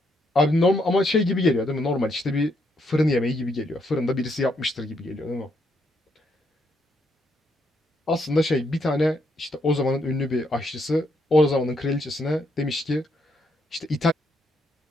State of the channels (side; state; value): both; normal; correlation 0.76